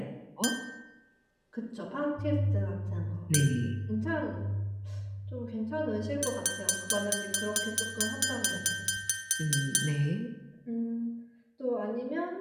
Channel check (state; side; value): identical; both; correlation 1.00